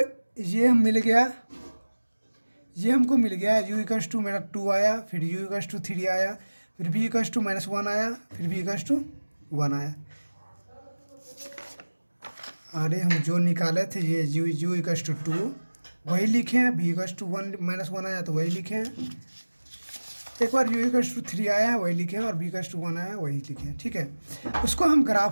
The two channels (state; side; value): inverted; both; correlation -1.00